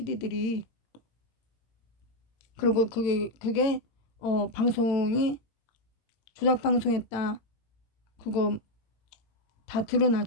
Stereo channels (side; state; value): right; late; 18 ms